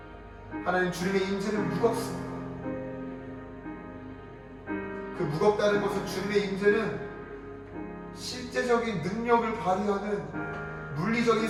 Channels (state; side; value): identical; both; correlation 1.00